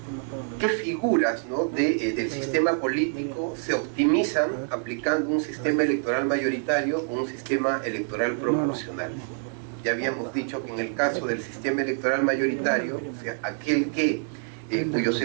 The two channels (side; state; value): left; silent; 58 dB below the other